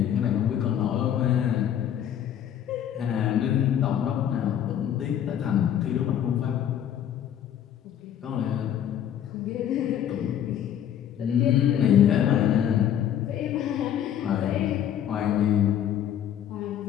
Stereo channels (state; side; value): quieter; right; 10.0 dB